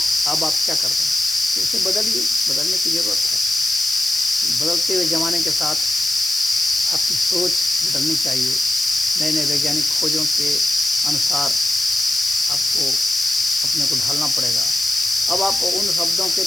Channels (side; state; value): left; noise; hiss, 6 dB below the sound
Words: अब आप क्या कर रहे हैं? तो उसे बदलिए, बदलने की ज़रूरत है। बदलते हुए ज़माने के साथ आपकी सोच बदलनी चाहिए। नए नए वैज्ञानिक खोजों के अनुसार आपको अपने को ढालना पड़ेगा। अब आप उन शब्दों के